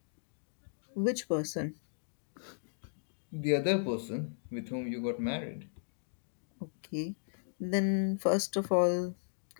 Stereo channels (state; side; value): silent; right; digital silence